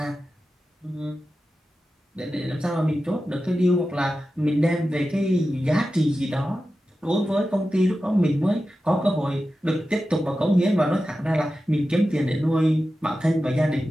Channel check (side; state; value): both; normal; correlation 0.93